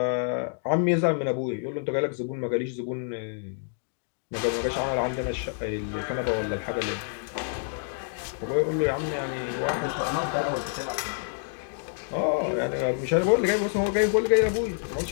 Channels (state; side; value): silent; right; digital silence